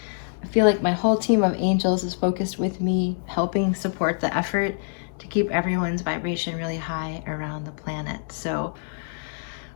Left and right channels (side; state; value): right; silent; digital silence